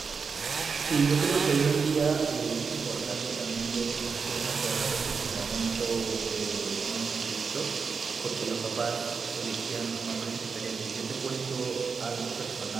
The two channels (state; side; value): quieter; left; 5.4 dB